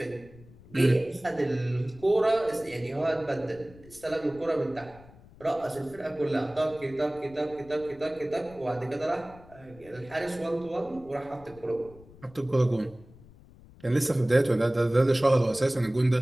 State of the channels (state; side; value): noise; left; rumble, 22 dB below the sound